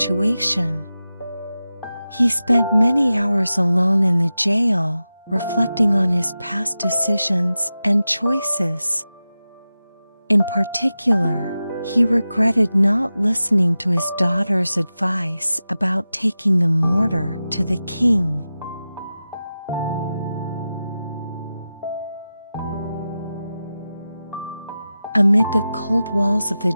He spent many hours alone in the jail, reflecting on his past decisions and choices. In particular, he regretted not listening to his daughter's advice about taking the mortar to the king. Amid the cold walls of the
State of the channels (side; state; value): both; inverted; correlation -0.93